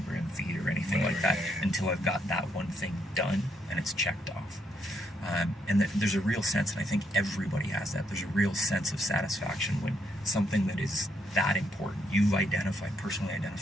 feed or anything like that until I've got that one thing done and it's checked off. And there's a real sense, and I think everybody has that, there's a real sense of satisfaction when something that is that important, you've personally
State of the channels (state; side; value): normal; both; correlation 0.75